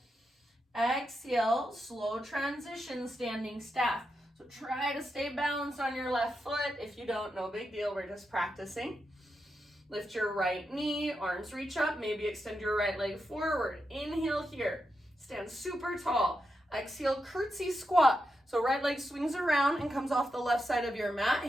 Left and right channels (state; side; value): normal; both; correlation 0.86